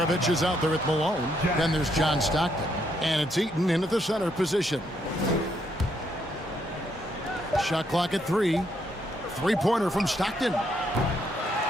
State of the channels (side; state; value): both; normal; correlation 0.74